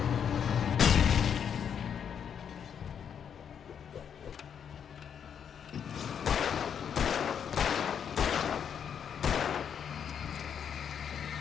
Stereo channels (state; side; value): quieter; right; 7.9 dB